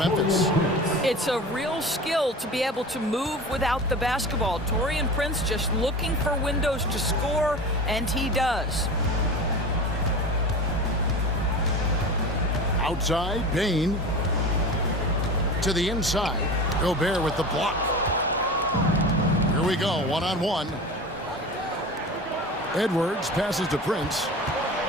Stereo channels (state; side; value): normal; both; correlation 0.32